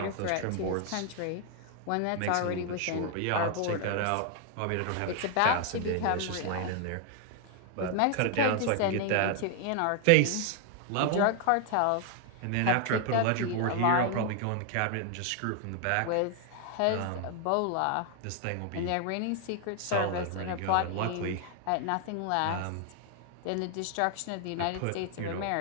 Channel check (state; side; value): different; both; correlation 0.00